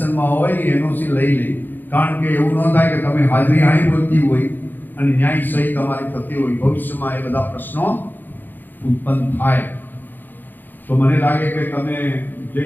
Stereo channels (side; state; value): right; late; 0.089 ms